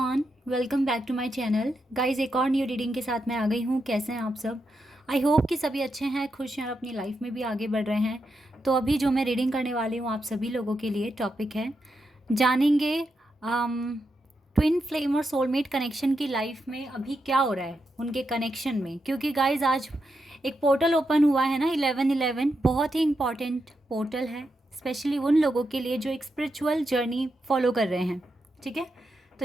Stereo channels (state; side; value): normal; both; correlation 0.85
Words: welcome back to my channel. Guys, एक और न्यू रीडिंग के साथ मैं आ गई हूँ। कैसे हैं आप सब? आई होप कि सभी अच्छे हैं, खुश हैं और अपनी लाइफ में भी आगे बढ़ रहे हैं। तो अभी जो मैं रीडिंग करने वाली हूँ आप सभी लोगों के लिए टॉपिक है, जानेंगे ट्विन फ्लेम और सोलमेट कनेक्शन की लाइफ में अभी क्या हो रहा है उनके कनेक्शन में। क्योंकि गाइस आज एक पोर्टल ओपन हुआ है ना, 11/11 बहुत ही इंपॉर्टेंट पोर्टल है, स्पेशली उन लोगों के लिए जो एक स्पिरिचुअल जर्नी फॉलो कर रहे हैं। ठीक है, तो